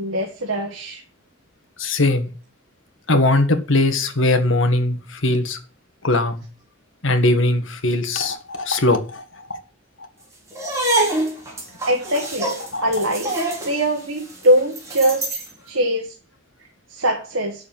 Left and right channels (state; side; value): normal; both; correlation 0.08